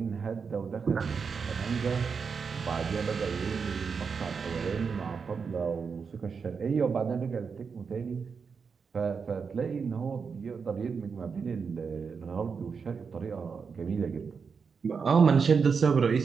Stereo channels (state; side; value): quieter; left; 5.7 dB